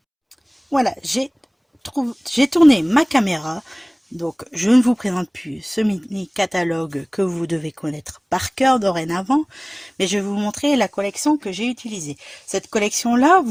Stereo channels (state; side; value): identical; both; correlation 1.00